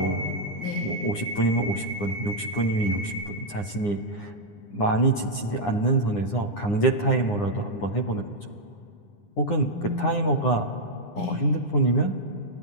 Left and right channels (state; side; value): late; right; 9.8 ms